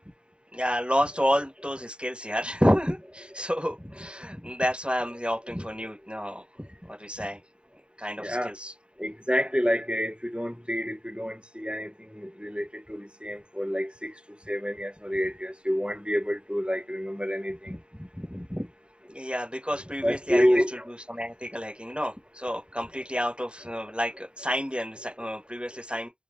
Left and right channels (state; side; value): late; left; 0.051 ms